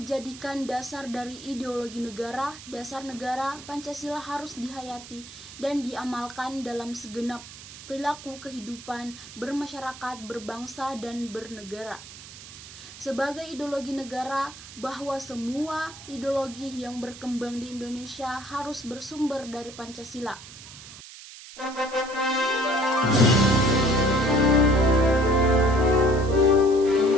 dasar dari ideologi negara. Dasar negara Pancasila harus dihayati dan diamalkan dalam segenap perilaku kehidupan bermasyarakat, berbangsa, dan bernegara. Sebagai ideologi negara, bahwa semua ideologi yang berkembang di Indonesia harus bersumber dari Pancasila.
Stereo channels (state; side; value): noise; right; hiss, 16 dB below the sound